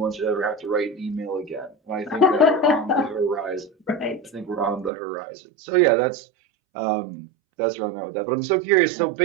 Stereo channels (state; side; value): drops out; left; at 4.9 s